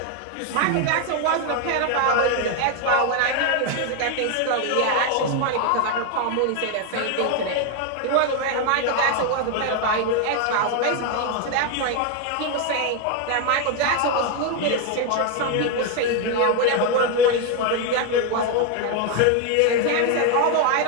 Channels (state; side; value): different; both; correlation 0.01